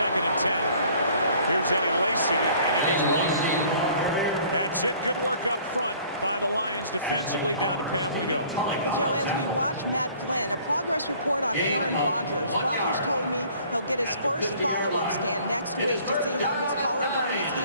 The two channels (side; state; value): both; inverted; correlation -0.54